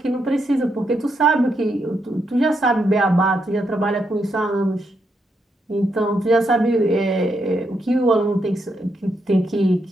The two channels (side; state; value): both; normal; correlation 0.80